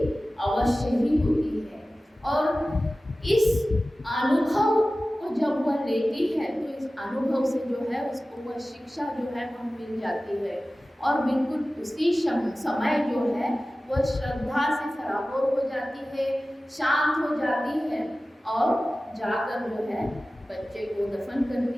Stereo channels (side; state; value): both; normal; correlation 0.96